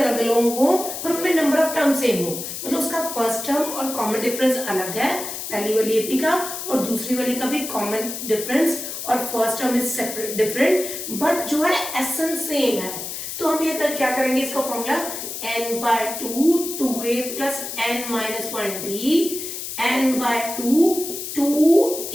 अलग हो पर उनमें नंबर ऑफ टर्म सेम हो, मतलब उसका फर्स्ट टर्म और कॉमन डिफरेंस अलग है पहली वाली एपी का, और दूसरी वाली का भी कॉमन डिफरेंस और first term is separate different, but जो है एसेंस सेम है। तो हम ये क्या करेंगे, इसका formula n by 2 2a plus n minus 1d, n by 2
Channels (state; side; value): noise; left; hiss, 7 dB below the sound